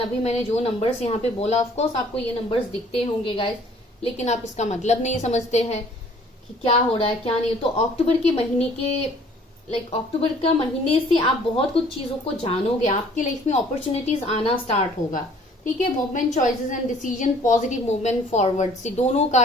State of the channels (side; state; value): both; normal; correlation 0.56